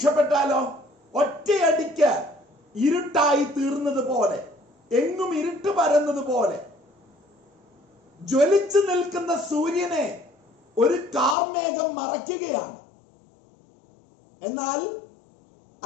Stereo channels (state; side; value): drops out; right; at 11.4 s